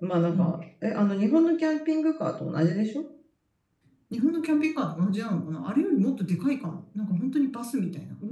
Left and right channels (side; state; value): both; identical; correlation 1.00